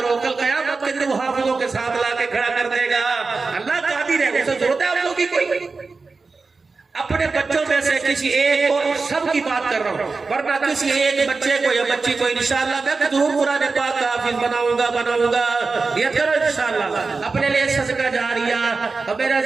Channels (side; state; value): left; quieter; 4.2 dB